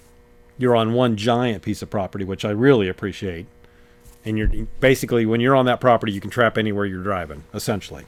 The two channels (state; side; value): identical; both; correlation 1.00